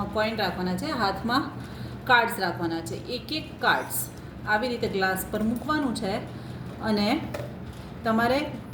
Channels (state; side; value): identical; both; correlation 1.00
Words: કોઈન રાખવાના છે, હાથમાં કાર્ડ્સ રાખવાના છે. એક એક કાર્ડ્સ આવી રીતે ગ્લાસ પર મૂકવાનું છે અને તમારે